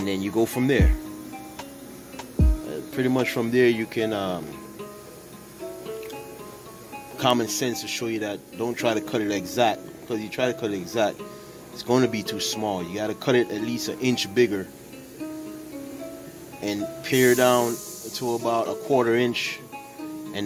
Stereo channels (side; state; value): both; identical; correlation 1.00